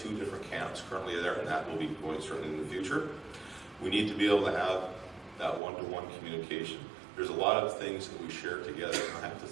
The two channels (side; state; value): left; drops out; at 5.6 s